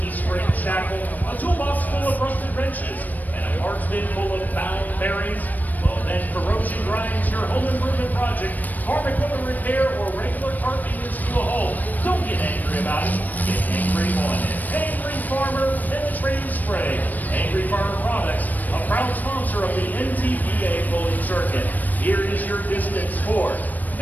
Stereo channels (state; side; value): late; right; 0.084 ms